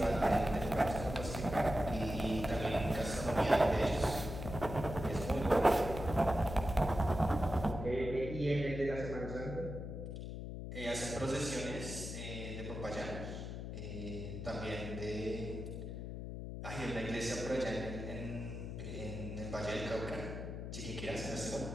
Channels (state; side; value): noise; left; hum, 7 dB below the sound